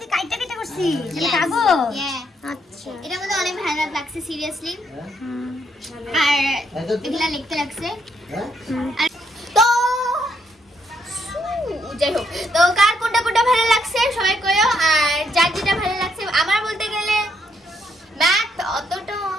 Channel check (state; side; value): normal; both; correlation 0.74